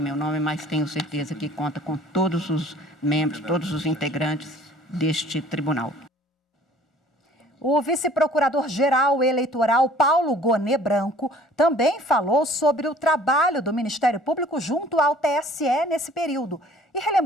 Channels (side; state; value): both; normal; correlation 0.52